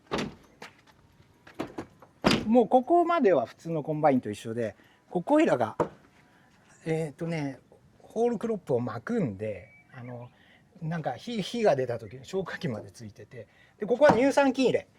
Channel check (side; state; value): both; identical; correlation 1.00